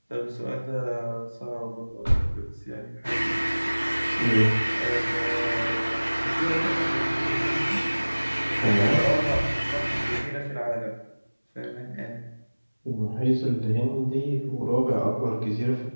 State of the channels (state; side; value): inverted; both; correlation -1.00